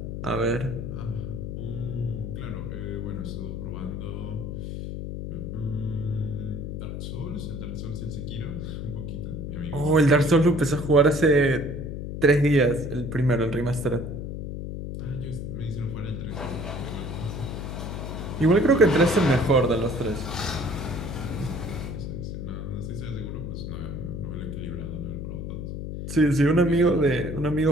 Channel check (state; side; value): noise; left; hum, 6 dB below the sound